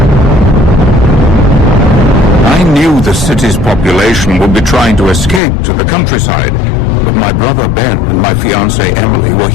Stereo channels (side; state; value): right; drops out; at 5.4 s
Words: The city's population would be trying to escape to the countryside, but my brother Ben and my fiancée Emily were